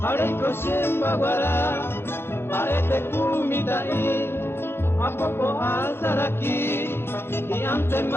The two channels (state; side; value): late; right; 0.11 ms